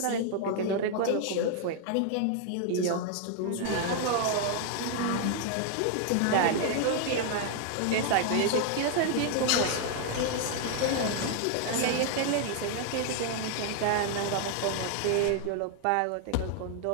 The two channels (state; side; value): different; both; correlation 0.00